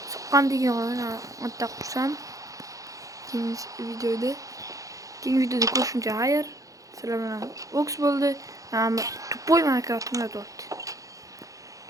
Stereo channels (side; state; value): left; late; 0.16 ms